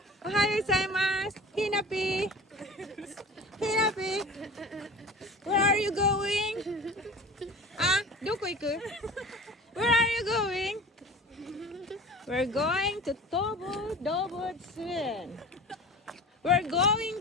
Ohayo gozaimasu. Hinapi. Hinapi. Where are you going? Doko iku? Where are you going? We're going to Dobotsun. We're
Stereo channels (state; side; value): normal; both; correlation 0.38